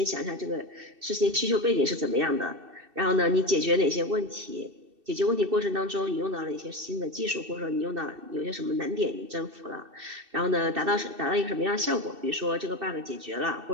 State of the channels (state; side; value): late; left; 2.6 ms